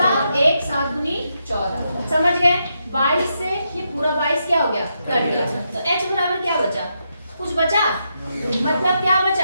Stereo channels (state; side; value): inverted; both; correlation -0.82